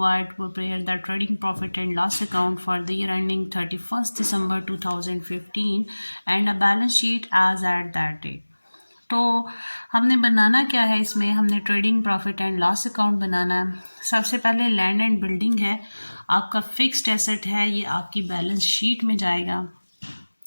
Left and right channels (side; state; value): both; inverted; correlation -1.00